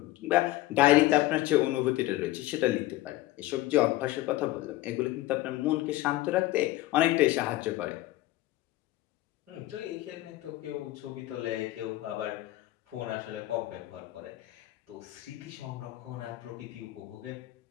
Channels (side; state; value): right; quieter; 16.8 dB